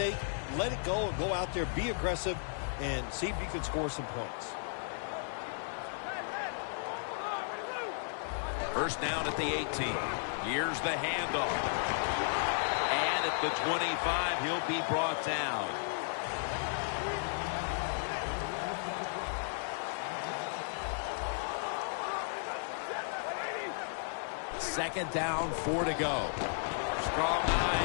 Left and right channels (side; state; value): right; silent; digital silence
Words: let it go, and go out there, be aggressive, and see if you can score some points. First down at the 18. Here's the handoff. And at the 25, he'll be brought down. Second down, 4 to go. Strong